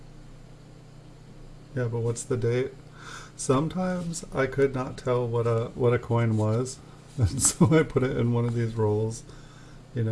Yeah, but what's the date? Sometimes I could not tell what a coin was, and so I put it in one of these rolls. You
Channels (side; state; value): both; identical; correlation 1.00